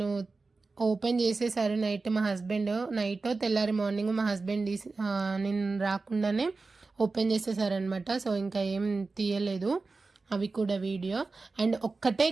ఓపెన్ చేసేసారు. నైట్ మా హస్బెండ్, నైట్ తెల్లారి మార్నింగ్ మా హస్బెండ్ నేను రాకుండానే ఓపెన్ చేసేసారనమాట. సో ఇంకా ఏం తీయలేదు అవి కూడా వీడియో. అండ్ ఒక్కటే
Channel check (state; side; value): quieter; left; 3.9 dB